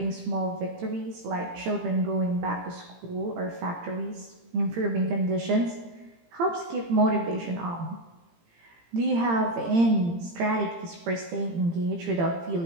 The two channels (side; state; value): left; late; 18 ms